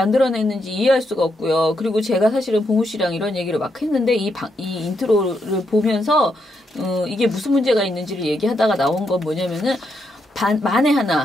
이해할 수가 없고요. 그리고 제가 사실은 봉우 씨랑 이런 얘기를 막 했는데 이 인트로를 보면서 이게 무슨 문제가 있는지를 얘기하다가 나온 건 뭐냐면은 만에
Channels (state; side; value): normal; both; correlation 0.80